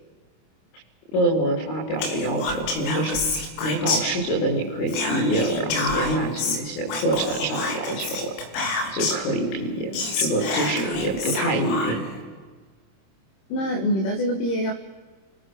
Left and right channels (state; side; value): late; right; 26 ms